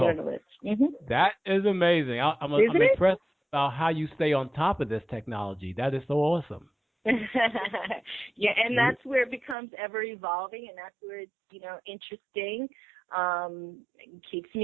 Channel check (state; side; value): drops out; left; at 9.6 s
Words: Mm-hmm. That is amazing. I'm impressed about how you stay on top of this technology. That is so awesome. Yeah, and that's where it becomes ever evolving, and that's where it's, interesting. It keeps